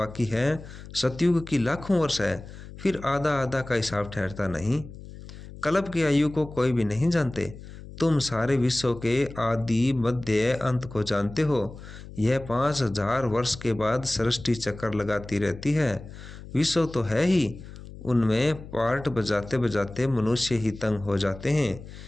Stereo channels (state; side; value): noise; left; hum, 15 dB below the sound